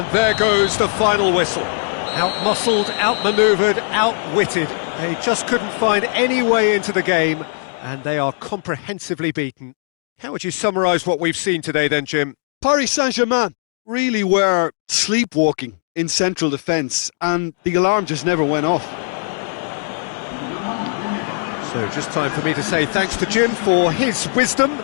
there goes the final whistle. Out-muscled, out-manoeuvred, out-witted. They just couldn't find any way into the game, and they are comprehensively beaten. How would you summarise what we've seen today then, Jim? Paris Saint-Germain really were sleepwalking in central defence, and the alarm just never went off. So just time for me to say thanks to Jim for his wisdom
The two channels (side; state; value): right; silent; 66 dB below the other